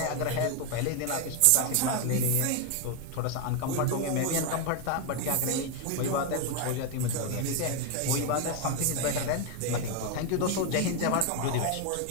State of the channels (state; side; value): different; both; correlation 0.01